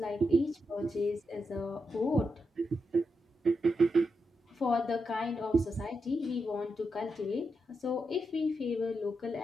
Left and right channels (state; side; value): normal; both; correlation 0.85